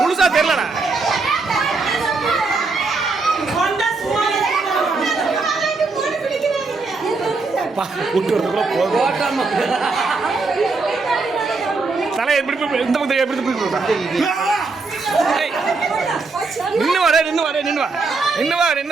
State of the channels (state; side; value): quieter; left; 4.0 dB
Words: முழுசா தெரியலடா. தலை எப்படி இந்த பக்கம் எப்படி நின்று வர நின்று வர நின்று வா நின்று வா